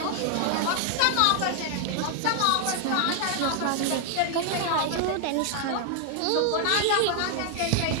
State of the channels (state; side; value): different; both; correlation 0.00